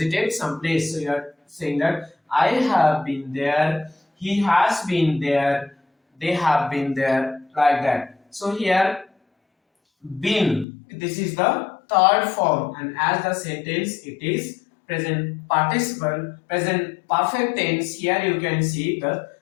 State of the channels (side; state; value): right; drops out; at 10.7 s